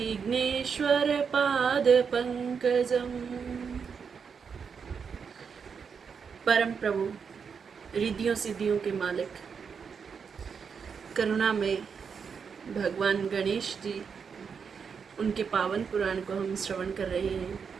परम प्रभु, रिद्धियों सिद्धियों के मालिक, करुणा में भगवान गणेश जी, उनके पावन पुराण को हम श्रवण कर रहे हैं।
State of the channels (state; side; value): quieter; left; 6.2 dB